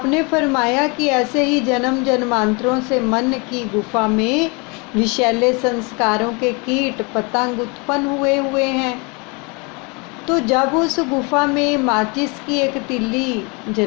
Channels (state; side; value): quieter; right; 30.4 dB